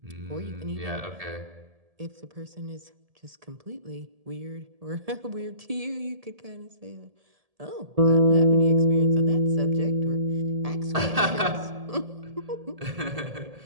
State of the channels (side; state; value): left; late; 1.7 ms